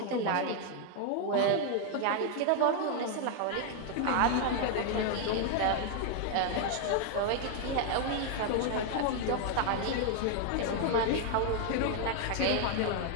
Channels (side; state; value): both; different; correlation 0.00